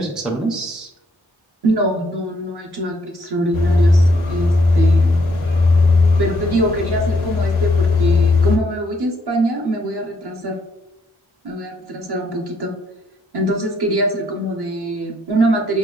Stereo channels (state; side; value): normal; both; correlation 0.72